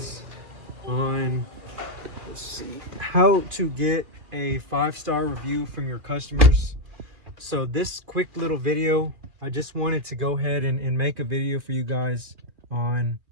on, let's see, how to get a 5-star review from your customers. So this quick little video, I just wanted to go ahead and make a video for you guys on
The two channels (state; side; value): late; left; 2.3 ms